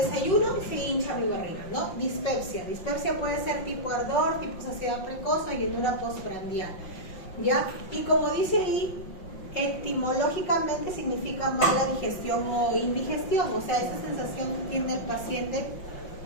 y se hincha mi barriga, ¿no? Dispepsia. Dispepsia puede ser tipo ardor, tipo saciedad precoz o llenura postprandial, ¿ya? Y como dice ahí, etimológicamente significa mala digestión o indigestión, o sea, esa sensación que tiene el paciente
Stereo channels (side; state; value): right; late; 5.6 ms